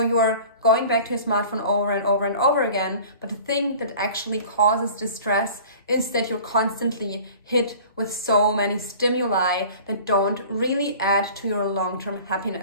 you are going back to your smartphone over and over and over again. But the thing that actually causes distress is that you're constantly hit with so many stimuli that don't really add to your long-term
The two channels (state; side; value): inverted; both; correlation -0.44